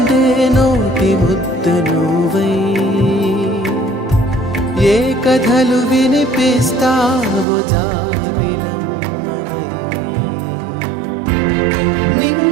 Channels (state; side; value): drops out; left; at 7.5 s